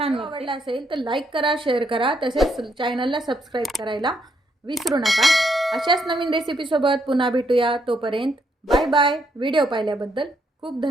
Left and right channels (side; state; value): both; normal; correlation 0.75